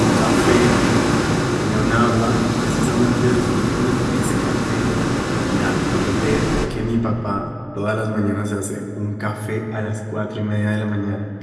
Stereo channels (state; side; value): identical; both; correlation 1.00